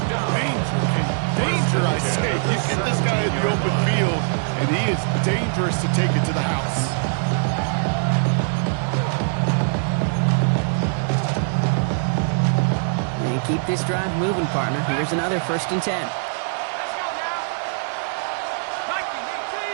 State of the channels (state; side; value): silent; left; digital silence